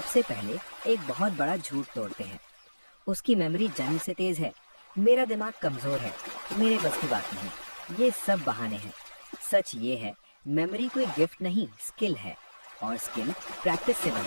पहले एक बहुत बड़ा झूठ तोड़ते हैं, उसकी मेमोरी जन्म से तेज है, मेरा दिमाग कमजोर है, मेरे बस की बात नहीं। ये सब बहाने हैं। सच ये है, मेमोरी कोई गिफ्ट नहीं स्किल है और स्किल प्रैक्टिस से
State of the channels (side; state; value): both; inverted; correlation -1.00